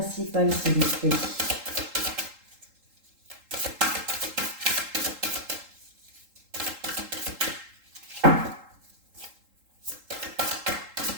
s'il vous plaît?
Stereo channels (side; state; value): left; late; 3.8 ms